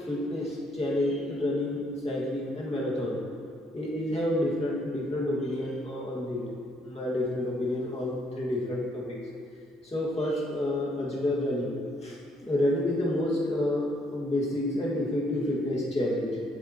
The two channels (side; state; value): both; normal; correlation 0.69